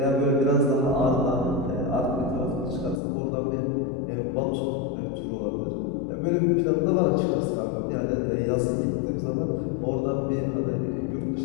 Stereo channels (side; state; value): right; drops out; at 3.0 s